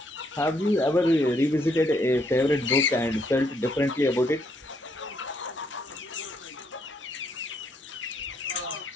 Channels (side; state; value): both; normal; correlation 0.73